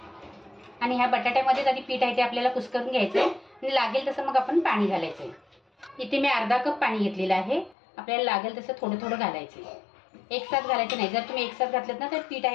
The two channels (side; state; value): right; drops out; at 7.8 s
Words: आणि ह्या बटाट्यामध्ये आधी पीठ आहे ते आपल्याला कुस्करून घ्यायचं आहे आणि लागेल तसं मग आपण पाणी घालायचं आहे। इथे मी अर्धा कप पाणी घेतलेलं आहे, आपल्याला लागेल तसं थोडं थोडं घालायचं आहे, एकसाथ घालायचं नाही। जर तुम्ही एकसाथ घातलं ना तर पीठ